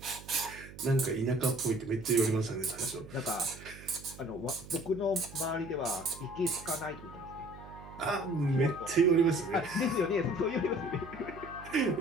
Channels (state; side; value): noise; right; hum, 16 dB below the sound